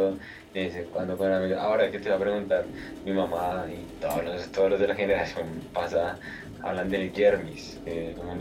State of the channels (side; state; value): both; identical; correlation 1.00